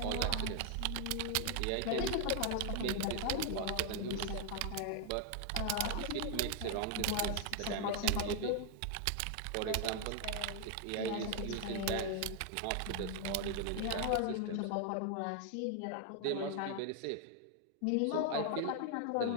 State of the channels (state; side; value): different; both; correlation 0.00